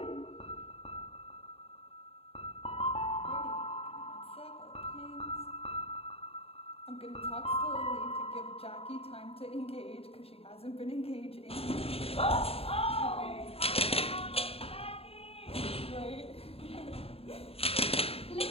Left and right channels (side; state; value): right; late; 0.28 ms